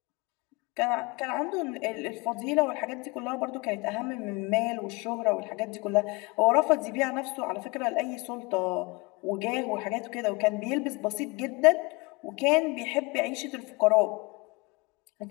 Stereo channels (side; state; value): right; quieter; 26.5 dB